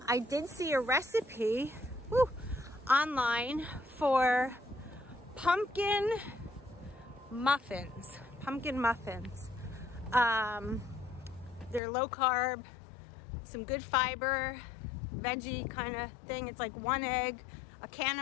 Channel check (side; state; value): right; drops out; at 11.8 s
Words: did see a recipe online for pumpkin muffins. They're low carb, some good fiber, veggie kind of thing. It's like 1 egg, a can